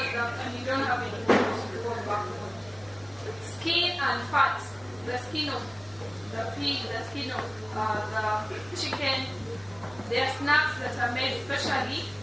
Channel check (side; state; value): right; noise; hum, 25 dB below the sound